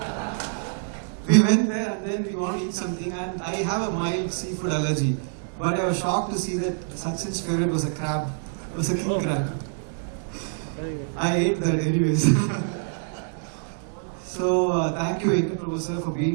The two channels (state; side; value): silent; left; digital silence